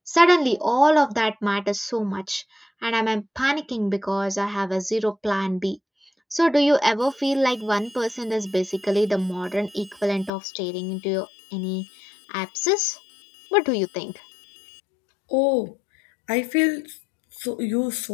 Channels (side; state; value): right; drops out; at 10.3 s